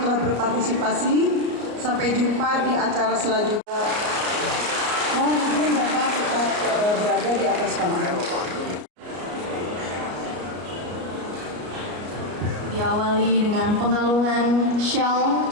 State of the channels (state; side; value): late; left; 33 ms